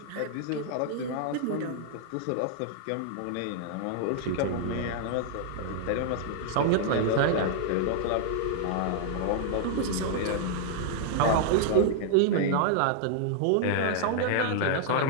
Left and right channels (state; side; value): different; both; correlation -0.01